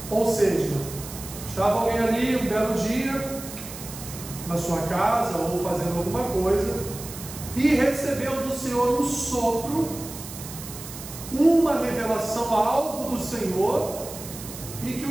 Ou seja, estava alguém ali um belo dia na sua casa ou fazendo alguma coisa e recebeu do Senhor um sopro, uma revelação, algo do Senhor, e que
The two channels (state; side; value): noise; right; hiss, 12 dB below the sound